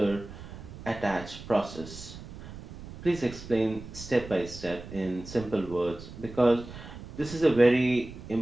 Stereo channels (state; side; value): noise; right; rumble, 14 dB below the sound